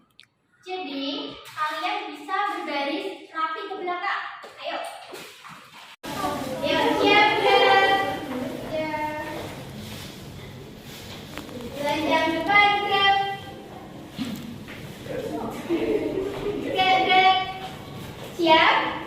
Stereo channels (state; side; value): identical; both; correlation 1.00